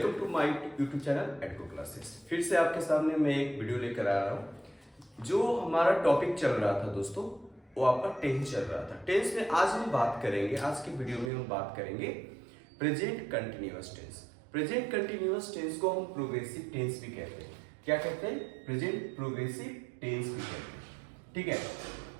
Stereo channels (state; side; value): drops out; left; at 11.3 s